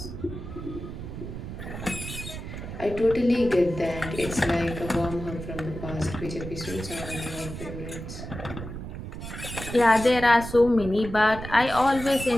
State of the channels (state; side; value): noise; right; rumble, 9 dB below the sound